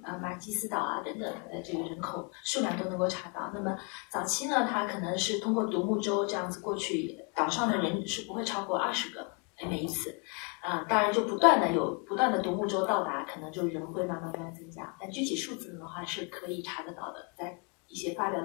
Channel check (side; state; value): right; quieter; 35.5 dB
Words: 马基斯岛啊等等的这个人口数量都能够查到。那么早期呢，它可能是通过独木舟这样子过去，岛上的人是不会超过20个每一次。当然就不断的独木舟到达，可能就人会慢慢增加，但具体数字的话是可以查得到的，在一些发表